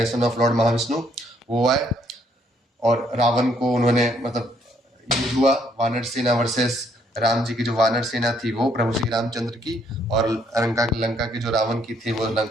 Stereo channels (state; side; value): normal; both; correlation 0.68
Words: of Lord Mahavishnu, वो आए और रावण को उन्होंने मतलब युद्ध हुआ, वानर सेना वर्सेस राम जी की जो वानर सेना थी वो प्रभु श्री रामचंद्र की, और लंका की जो रावण की थी वो